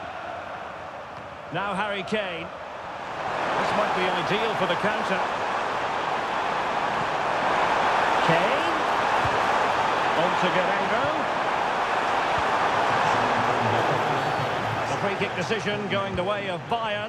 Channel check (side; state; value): both; identical; correlation 1.00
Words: Now Harry Kane. This might be ideal for the counter. Kane. On to Guerrero. Free kick decision going the way of